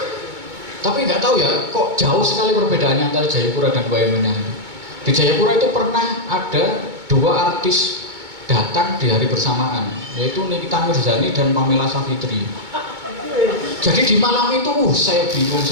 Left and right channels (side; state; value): left; late; 2.2 ms